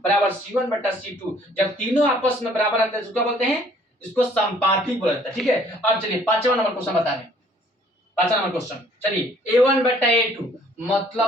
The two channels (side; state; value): both; normal; correlation 0.59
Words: बराबर C1 बटा C2 जब तीनों आपस में बराबर रहते हैं इसको क्या बोलते हैं, इसको संपाती बोला जाता है, ठीक है। अब चलिए 5वां नंबर क्वेश्चन बता रहे हैं, 5वां नंबर क्वेश्चन, चलिए A1 बटा A2